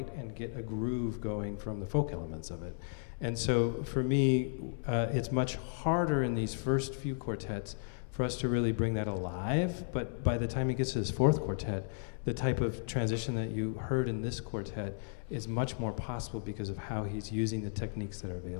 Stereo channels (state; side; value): silent; right; 55 dB below the other